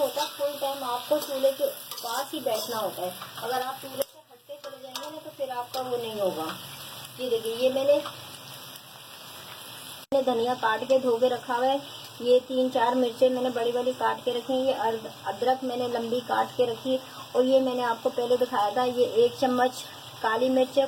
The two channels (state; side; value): identical; both; correlation 1.00